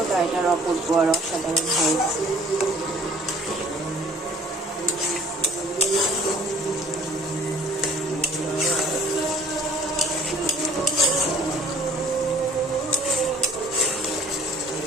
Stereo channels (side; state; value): both; normal; correlation 0.53